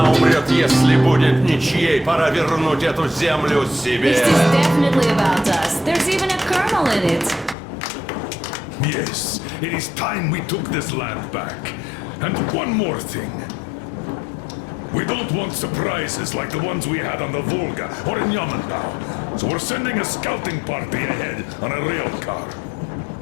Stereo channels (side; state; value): right; drops out; at 7.6 s